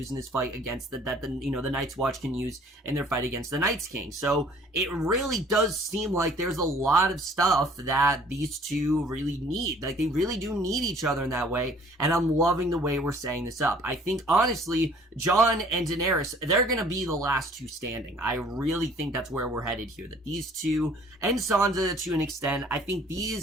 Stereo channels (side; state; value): both; normal; correlation 0.55